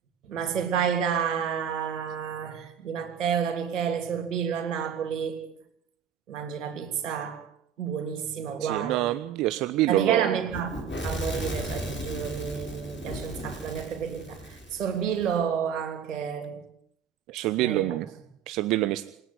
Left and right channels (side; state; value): left; quieter; 8.3 dB